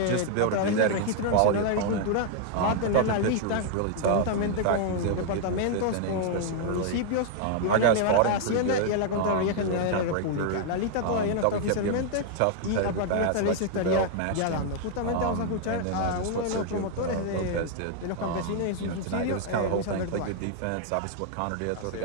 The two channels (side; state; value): both; different; correlation 0.00